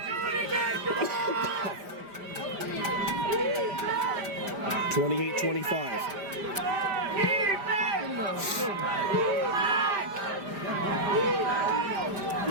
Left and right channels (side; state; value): left; late; 5.0 ms